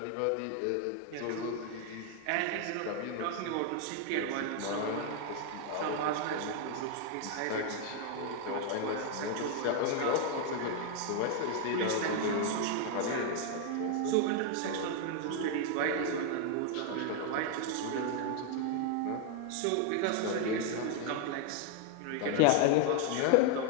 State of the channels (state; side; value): different; both; correlation 0.00